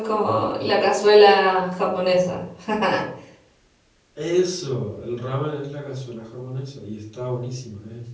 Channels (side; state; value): both; identical; correlation 1.00